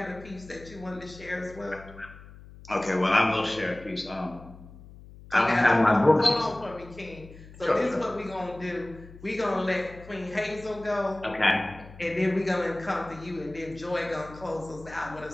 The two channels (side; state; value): left; noise; hum, 18 dB below the sound